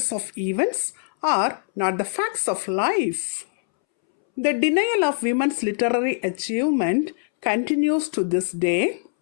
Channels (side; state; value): right; silent; 63 dB below the other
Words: of events, are not the facts of life. The denial of women's literary achievement continues to this day.